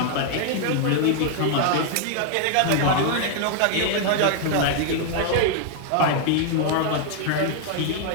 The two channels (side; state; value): both; different; correlation 0.00